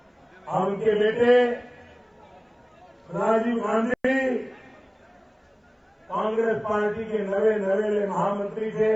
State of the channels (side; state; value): both; identical; correlation 1.00